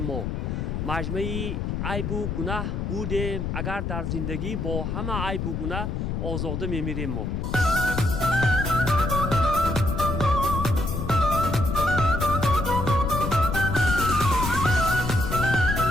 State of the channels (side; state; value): left; noise; rumble, 2 dB below the sound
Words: ما. مجموعه عیب و گناه بودیم، اگر در زندگی با همه عیب و گناه آزاده میمیریم ما.